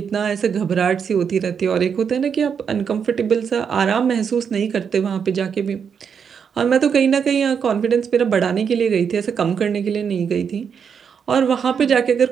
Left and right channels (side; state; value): left; quieter; 6.9 dB